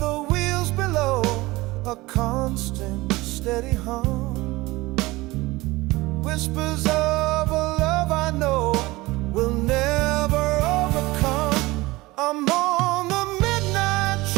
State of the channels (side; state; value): left; quieter; 20.6 dB